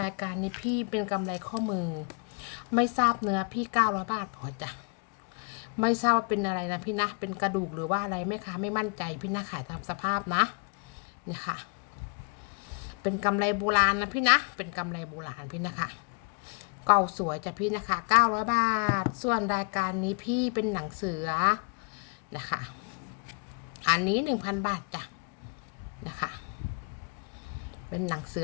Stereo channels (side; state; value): right; quieter; 36.6 dB